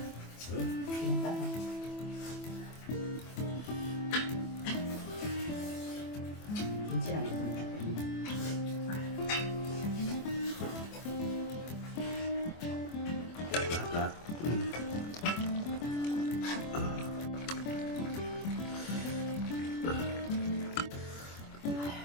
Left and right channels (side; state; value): right; late; 24 ms